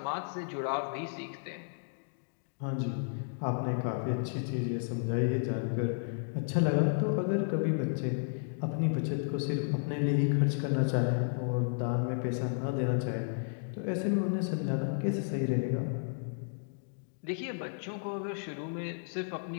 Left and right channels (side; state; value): right; silent; digital silence